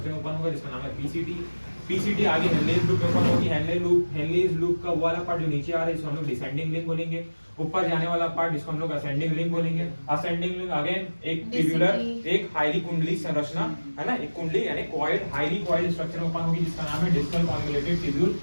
में ओपन होगा, जिसका नाम है पीसीटी। पीसीटी आगे हेनलेज लूप में ओपन होगी। हेनलेज लूप का वाला पार्ट जो नीचे आ रहा है, इसको हम लोग डिसेंडिंग लिंक बोलेंगे। ऊपर जाने वाला पार्ट, जिसको हम लोग असेंडिंग लिंक बोलेंगे। असेंडिंग लिंक अगेन एक ट्यूबुलर, एक हाईली कुंडली संरचना है ना, एक कुंडली यानी कॉइल्ड, हाईली कॉइल्ड स्ट्रक्चर में ओपन होगी, जिसका नाम है डिस्टल कॉन्वोल्यूटेड ट्यूब्यूल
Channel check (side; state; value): both; inverted; correlation -1.00